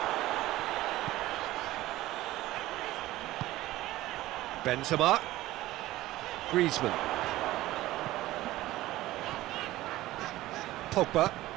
Benzema. Griezmann. Pogba.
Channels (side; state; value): left; quieter; 16.6 dB